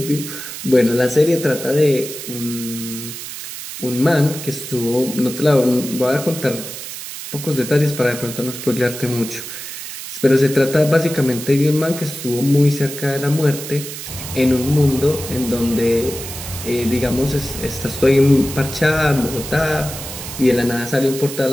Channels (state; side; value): noise; right; hiss, 9 dB below the sound